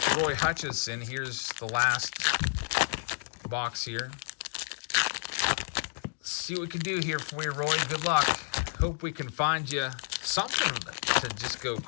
Roy Hutchinson. Here's the last box here. Let's see what we can do here for you, Roy. Good luck. Hope we can find you something to just go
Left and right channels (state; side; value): silent; right; digital silence